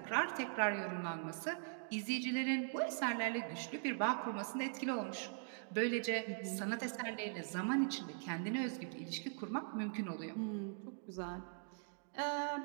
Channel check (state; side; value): silent; left; digital silence